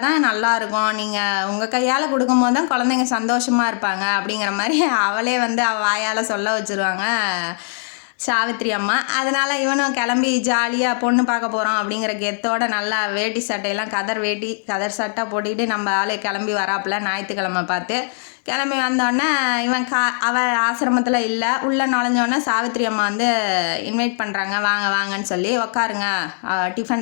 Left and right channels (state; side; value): silent; right; 66 dB below the other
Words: தான் நல்லாயிருக்கும், நீங்கள் உங்கள் கையால் கொடுக்கும்போது தான் குழந்தைங்க சந்தோஷமாக இருப்பாங்க அப்படிங்கிற மாதிரி அவளே வந்து அவள் வாயால் சொல்ல வச்சுருவாங்க சாவித்திரி அம்மா. அதனால் இவனும் கிளம்பி ஜாலியாக பொண்ணு பார்க்க போகிறோம் அப்படிங்கிற கெத்தோட நல்லா வேட்டி சட்டையெல்லாம் கதர் சட்டை போட்டுக்கிட்டு நம்ம ஆளு கிளம்பி வராப்புல ஞாயிற்றுக்கிழமை பார்த்து. கிளம்பி வந்தோடனே இவன் அவள் ஆசிரமத்தில் இல்லை. உள்ளே நுழைஞ்சோடனே சாவித்திரி அம்மா வந்து இன்வைட் பண்ணுறாங்க, வாங்க வாங்கன்னு சொல்லி. உட்காருங்க,